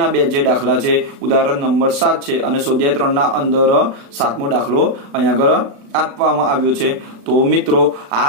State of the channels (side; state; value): left; late; 36 ms